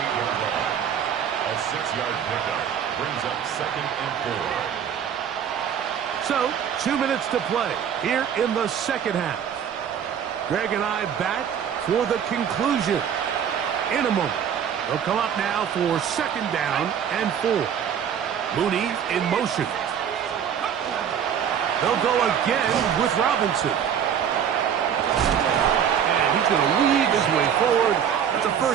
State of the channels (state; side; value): quieter; left; 8.4 dB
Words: line. A 6-yard pickup brings up 2nd and 4. So, 2 minutes to play here in the second half. Greg and I back for the conclusion in a moment. They'll come up now for 2nd down and 4. Mooney in motion. They'll go again with Robinson. And he's going to weave his way forward. That's a